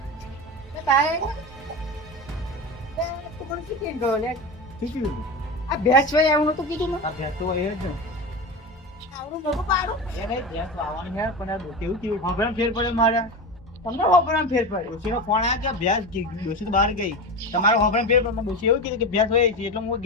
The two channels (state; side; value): normal; both; correlation 0.23